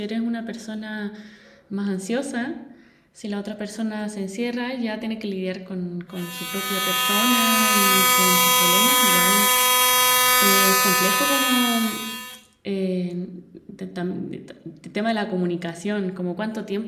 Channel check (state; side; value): identical; both; correlation 1.00